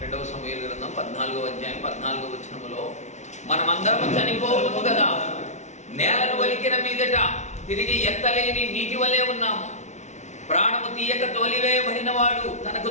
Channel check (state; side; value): late; right; 0.33 ms